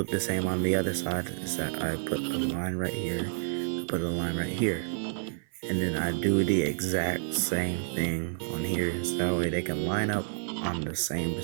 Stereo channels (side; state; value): left; silent; 58 dB below the other